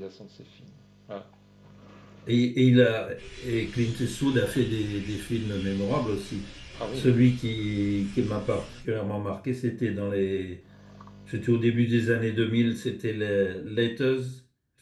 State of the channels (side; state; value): both; identical; correlation 1.00